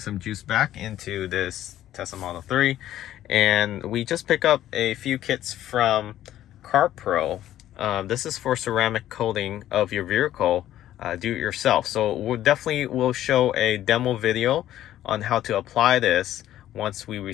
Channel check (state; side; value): quieter; right; 12.7 dB